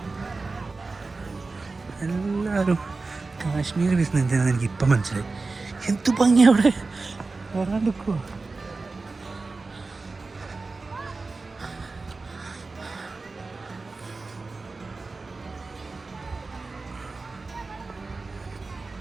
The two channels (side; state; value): left; quieter; 3.8 dB